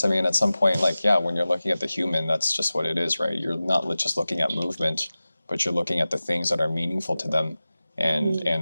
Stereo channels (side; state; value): both; inverted; correlation -0.97